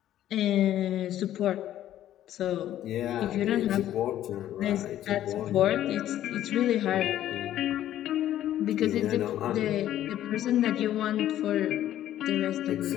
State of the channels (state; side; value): quieter; right; 12.3 dB